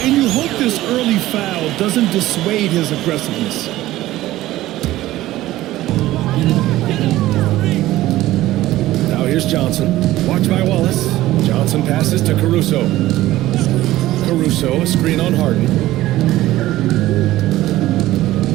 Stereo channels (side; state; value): left; quieter; 15.8 dB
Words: And you hope this early foul doesn't dissuade his aggressiveness. Now here's Johnson. Watch by Wallace. Johnson passes to Caruso. Caruso, a screen on Harden.